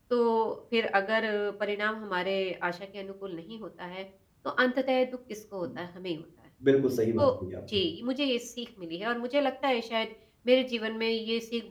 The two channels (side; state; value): both; identical; correlation 1.00